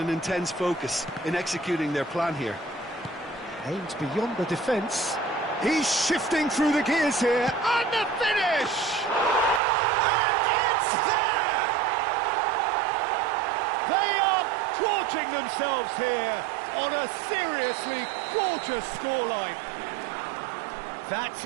intense focus in executing their plan here. Aims beyond the defence. He's shifting through the gears here. And the finish! And it's there! They are gorging themselves here on a seriously gorgeous scoreline. That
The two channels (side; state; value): left; drops out; at 9.6 s